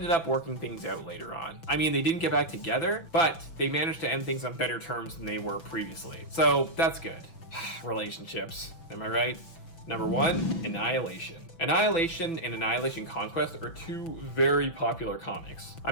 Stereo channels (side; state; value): right; late; 6.0 ms